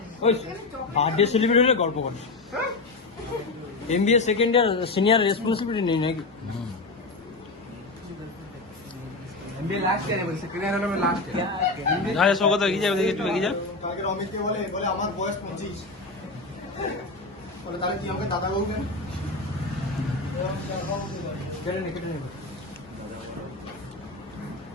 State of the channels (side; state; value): right; quieter; 3.4 dB